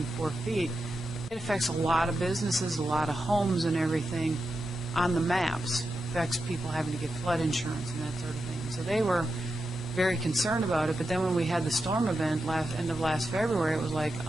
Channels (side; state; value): both; normal; correlation 0.88